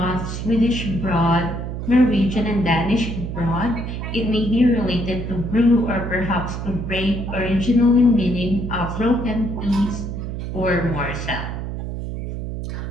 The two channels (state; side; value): noise; right; hum, 5 dB below the sound